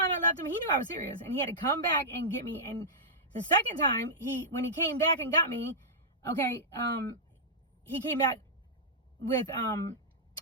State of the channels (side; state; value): both; normal; correlation -0.11